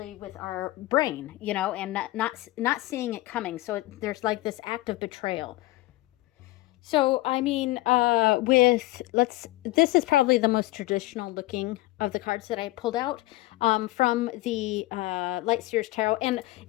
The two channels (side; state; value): right; quieter; 19.0 dB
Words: with our brain, and not seeing it coming. So there's like this act of betrayal. So, I mean, this is probably the most traditional looking of the cards that I pulled out from the Light Seers Tarot. And